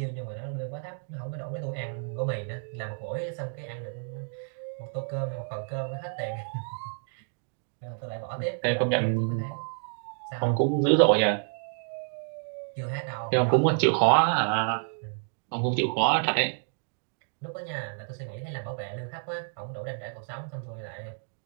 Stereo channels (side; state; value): left; silent; 58 dB below the other